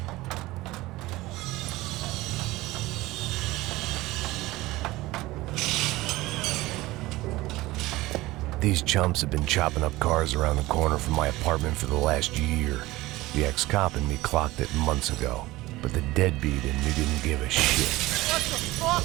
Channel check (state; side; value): quieter; left; 18.9 dB